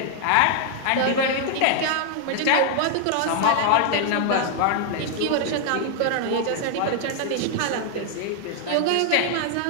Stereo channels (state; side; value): different; both; correlation 0.00